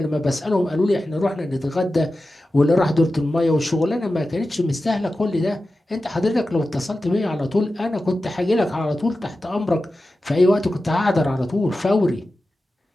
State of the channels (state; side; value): normal; both; correlation 0.93